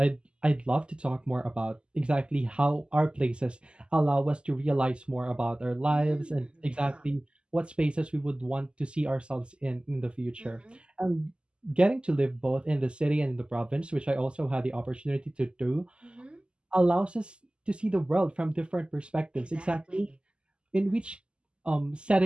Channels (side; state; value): left; late; 0.051 ms